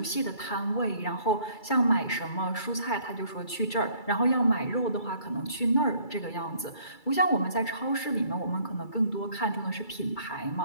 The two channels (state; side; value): late; right; 2.3 ms